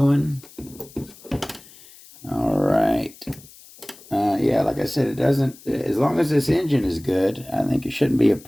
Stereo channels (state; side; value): noise; left; hiss, 22 dB below the sound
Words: All right. Yeah, like I said, it doesn't, as long as this engine is good, I think it shouldn't be a